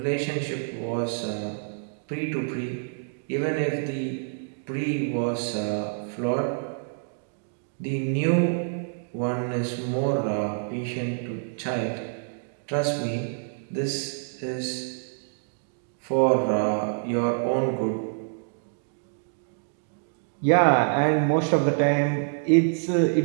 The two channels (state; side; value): silent; left; digital silence